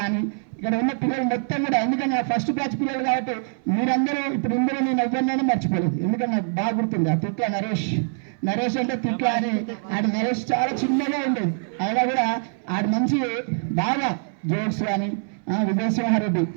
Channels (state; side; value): silent; left; 61 dB below the other